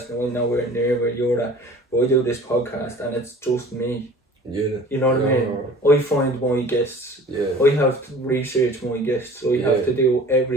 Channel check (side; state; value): both; normal; correlation 0.46